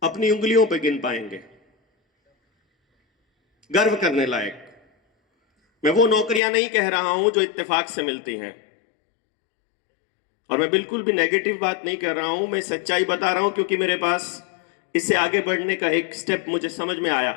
अपनी उंगलियों पर गिन पाएंगे। गर्व करने लायक, मैं वो नौकरियां नहीं कह रहा हूं जो इत्तेफाक से मिलती हैं, और मैं बिल्कुल भी नेगेटिव बात नहीं कर रहा हूं, मैं सच्चाई बता रहा हूं, क्योंकि मेरे पास इससे आगे बढ़ने का एक स्टेप मुझे समझ में आया।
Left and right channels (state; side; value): drops out; right; at 6.4 s